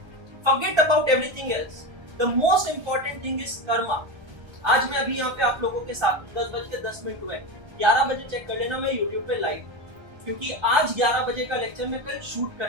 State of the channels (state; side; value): late; left; 1.3 ms